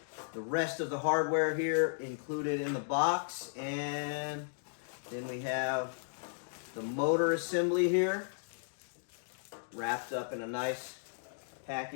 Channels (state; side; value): silent; right; digital silence